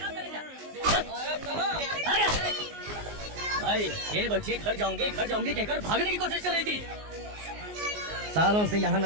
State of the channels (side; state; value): left; late; 19 ms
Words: भाई ये बच्ची घर जाऊंगी कहकर भागने की कोशिश कर रही थी। सालों से यहाँ